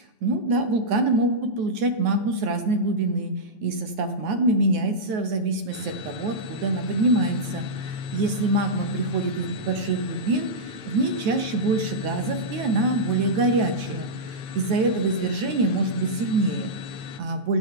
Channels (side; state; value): left; late; 9.4 ms